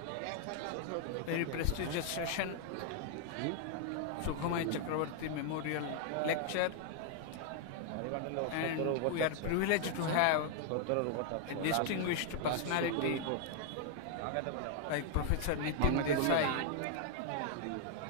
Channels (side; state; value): both; different; correlation 0.00